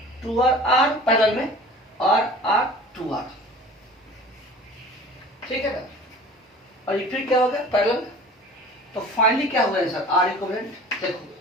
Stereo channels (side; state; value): both; normal; correlation 0.43